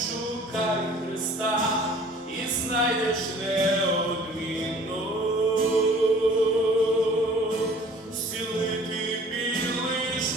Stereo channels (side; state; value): both; normal; correlation 0.50